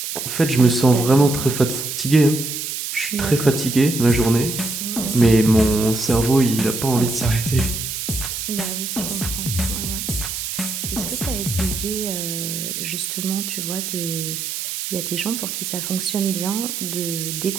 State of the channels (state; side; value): noise; right; hiss, 5 dB below the sound